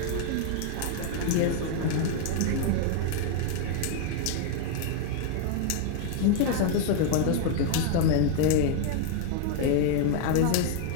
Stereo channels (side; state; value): both; different; correlation 0.00